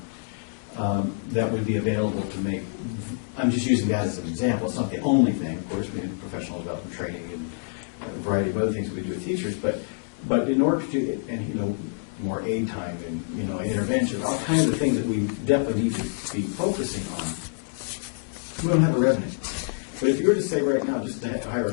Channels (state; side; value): silent; right; digital silence